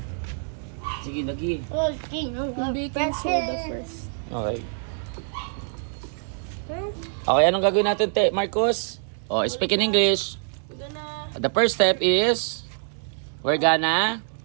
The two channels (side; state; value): left; silent; 62 dB below the other